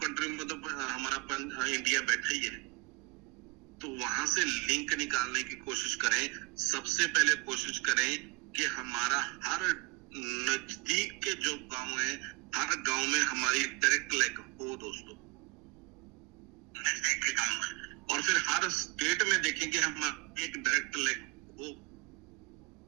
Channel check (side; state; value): left; quieter; 23.8 dB